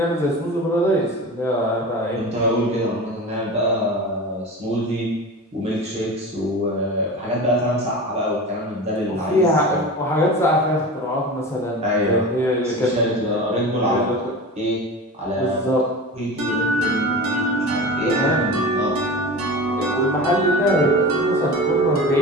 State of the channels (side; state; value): both; normal; correlation 0.31